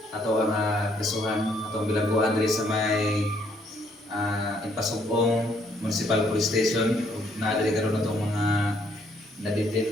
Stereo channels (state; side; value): normal; both; correlation 0.68